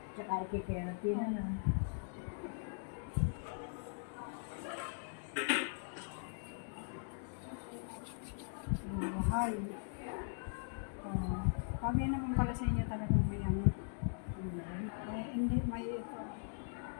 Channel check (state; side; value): silent; right; digital silence